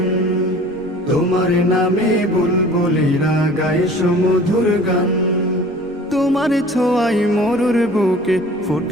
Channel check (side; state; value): both; normal; correlation 0.46